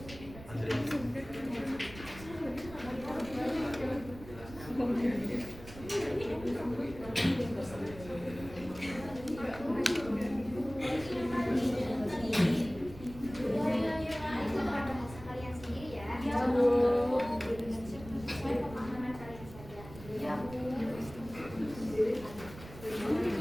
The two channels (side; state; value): right; noise; rumble, 16 dB below the sound